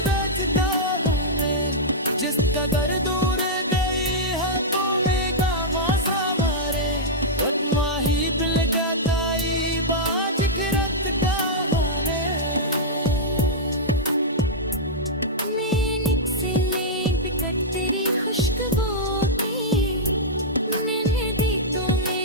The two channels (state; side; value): normal; both; correlation -0.09